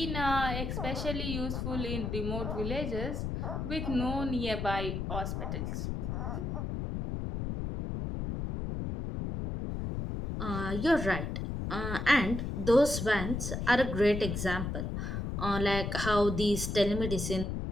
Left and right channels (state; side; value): noise; left; rumble, 3 dB below the sound